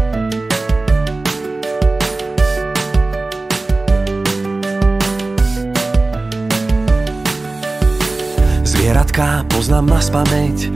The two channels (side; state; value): left; quieter; 3.2 dB